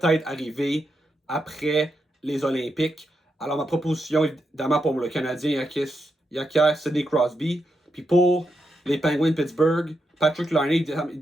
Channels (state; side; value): normal; both; correlation 0.84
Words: arriver après les Olympiques. Alors, ma proposition, évidemment, pour le Canadien, il acquiert Sidney Crosby. Puis pour les Penguins de Pittsburgh, Patrick Laine,